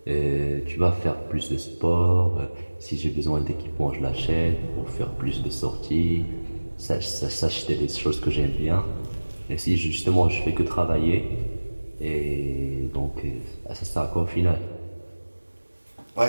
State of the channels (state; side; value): inverted; both; correlation -1.00